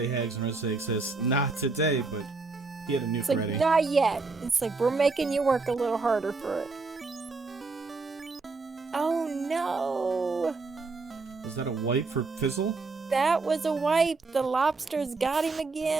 Hags and Red say says, "Not today," but he had a nuke It's like, ready. not yet. It's like, we're making you work a little harder for it. Oh no! Was that a wipe for Fizzle? That was a wipe. The lobsters got him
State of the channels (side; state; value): left; quieter; 3.9 dB